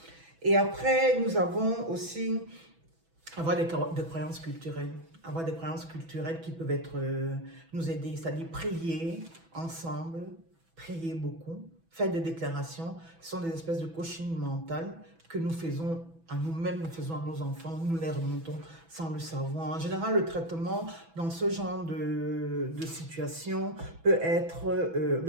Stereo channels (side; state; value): left; late; 6.1 ms